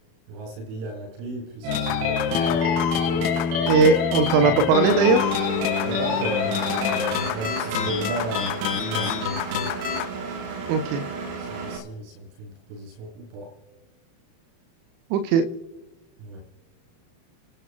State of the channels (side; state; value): left; late; 36 ms